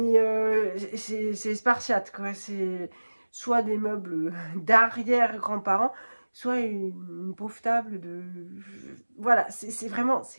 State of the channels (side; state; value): both; inverted; correlation -1.00